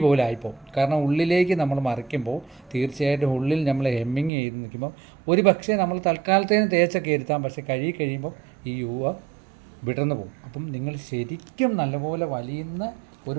പോലെ ആയിപ്പോവും. കാരണം ഉള്ളിലേക്ക് നമ്മൾ മറിക്കുമ്പോൾ തീർച്ചയായിട്ടും ഉള്ളിൽ നമ്മൾ ഹെമ്മിങ് ചെയ്ത് നിൽക്കുമ്പോൾ ഒരു പക്ഷേ നമ്മൾ തൽക്കാലത്തേന് തേച്ചൊക്കെ ഇരുത്താം, പക്ഷേ കഴിയുമ്പോൾ ഈ യുവ വിടർന്നു പോകും. അപ്പം നിങ്ങൾ ശരിക്കും നല്ലപോലെ വലിയുന്ന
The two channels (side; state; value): left; drops out; at 4.3 s